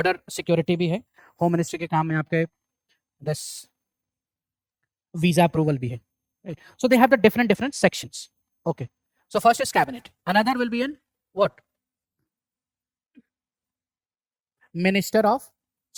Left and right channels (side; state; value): both; identical; correlation 1.00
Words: सिक्योरिटी भी है, होम मिनिस्ट्री के काम में आपके दिस वीजा अप्रूवल भी है. So they have the different sections. Okay. So first is cabinet. Another will be in what? Minister of